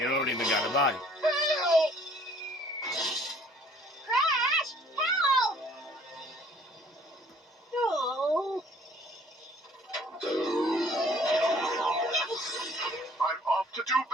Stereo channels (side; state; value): both; normal; correlation 0.57